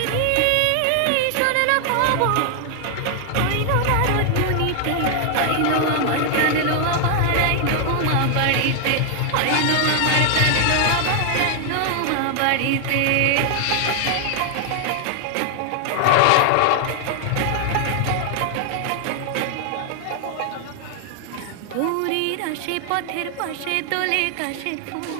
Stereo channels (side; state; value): both; different; correlation 0.00